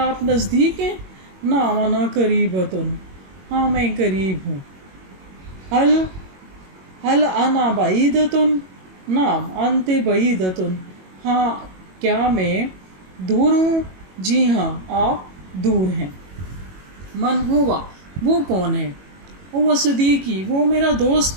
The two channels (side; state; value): left; late; 21 ms